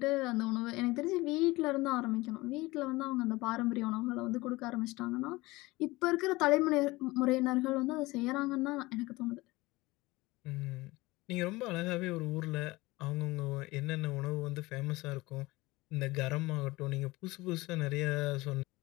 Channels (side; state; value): right; quieter; 20.9 dB